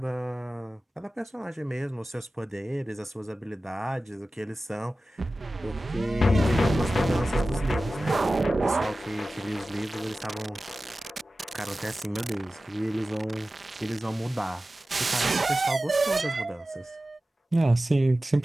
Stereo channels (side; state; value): both; normal; correlation 0.96